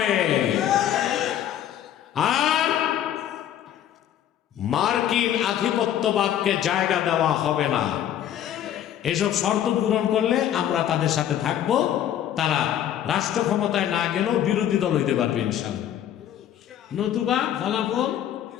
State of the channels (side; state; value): right; quieter; 10.9 dB